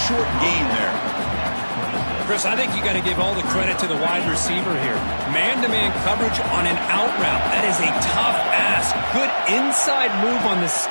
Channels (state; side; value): inverted; both; correlation -1.00